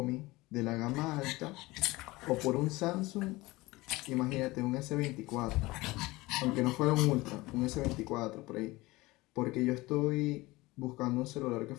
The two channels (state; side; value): quieter; right; 20.8 dB